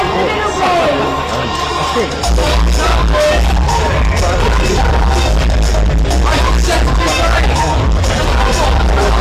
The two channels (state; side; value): identical; both; correlation 1.00